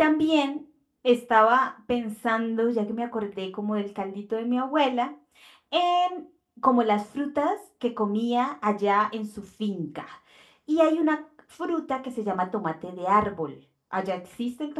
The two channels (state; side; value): identical; both; correlation 1.00